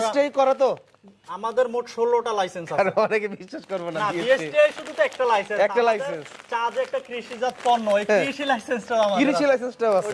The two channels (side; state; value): both; identical; correlation 1.00